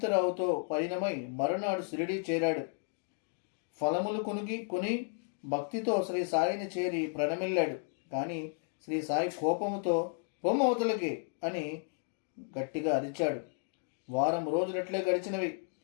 పయనమై మరునాడు షిరిడీ చేరాడు. ఫలములు కొని భక్తితో శ్రీ సాయిని చేరి ప్రణమిల్లాడు. కానీ శ్రీ సాయి కోపముతో పొమ్మవతలకి అని గట్టిగా అరిచాడు. వారం రోజులట్లే గడిచినవి.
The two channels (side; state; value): right; silent; 56 dB below the other